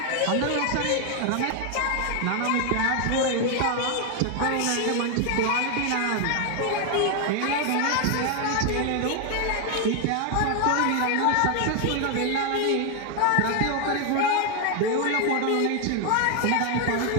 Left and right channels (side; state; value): both; different; correlation 0.01